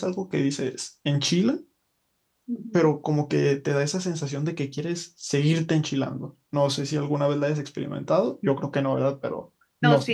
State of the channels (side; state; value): both; identical; correlation 1.00